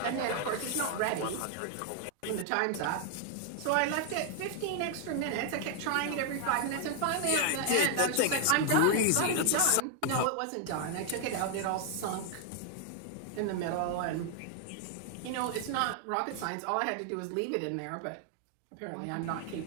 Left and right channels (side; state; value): both; different; correlation 0.00